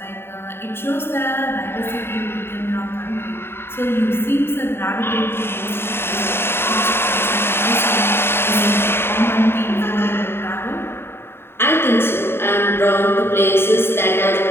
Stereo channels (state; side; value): late; right; 0.11 ms